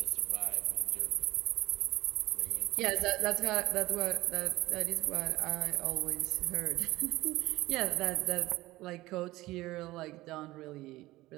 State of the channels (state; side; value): quieter; left; 18.3 dB